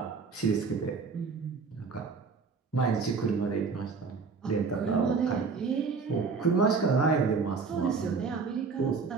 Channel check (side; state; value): left; quieter; 4.9 dB